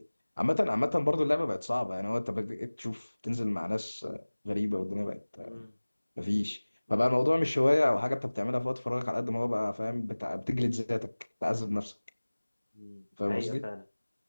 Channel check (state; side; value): inverted; both; correlation -1.00